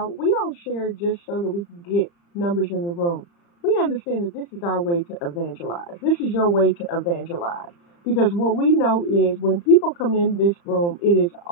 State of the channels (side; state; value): right; late; 35 ms